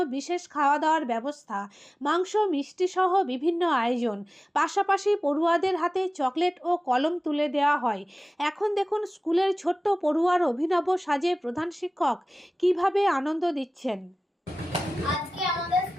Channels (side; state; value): both; normal; correlation 0.97